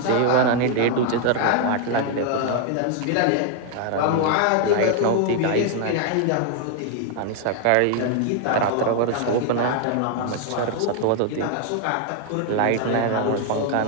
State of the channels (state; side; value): different; both; correlation 0.00